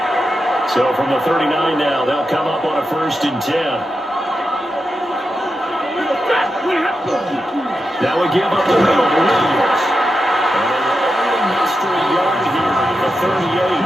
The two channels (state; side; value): normal; both; correlation 0.88